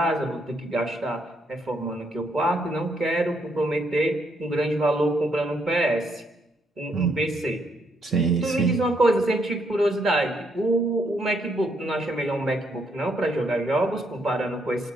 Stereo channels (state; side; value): normal; both; correlation 0.74